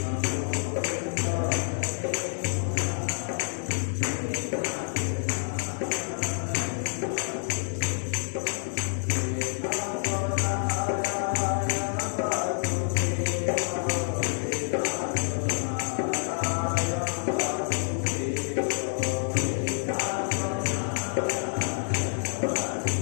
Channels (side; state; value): right; silent; digital silence